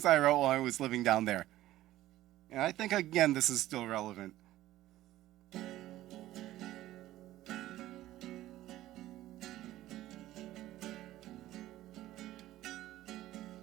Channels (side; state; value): left; quieter; 14.9 dB